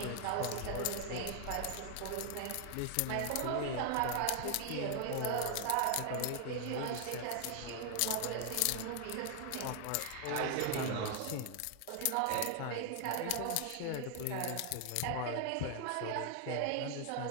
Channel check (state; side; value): different; both; correlation 0.00